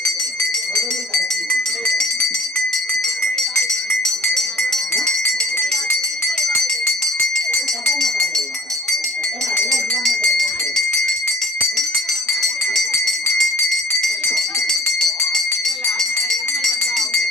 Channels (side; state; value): both; normal; correlation 0.49